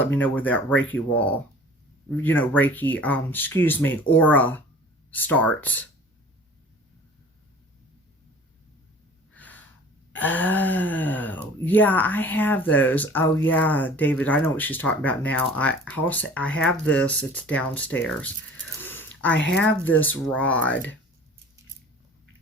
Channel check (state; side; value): normal; both; correlation 0.46